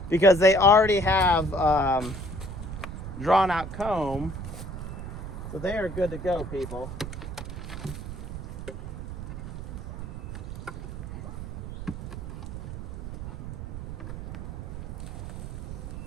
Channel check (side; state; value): right; noise; rumble, 7 dB below the sound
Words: because they already have drawn out comb, so they are good to go, people.